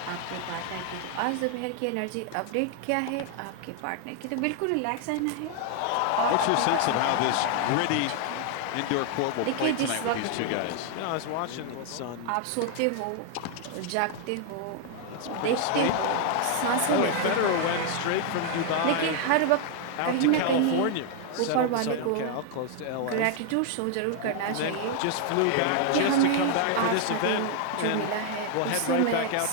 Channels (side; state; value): both; different; correlation 0.00